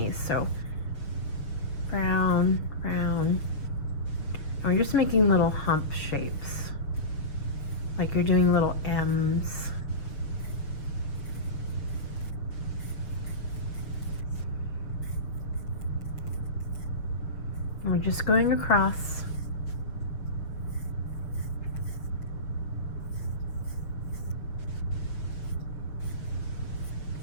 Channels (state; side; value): late; right; 6.6 ms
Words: So frown, frown, And we're just making little hump shapes, like you're doing little M's. And we're just going across.